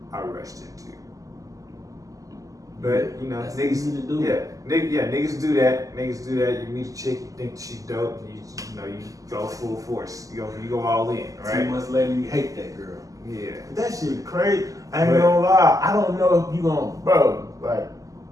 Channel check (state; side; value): late; left; 0.17 ms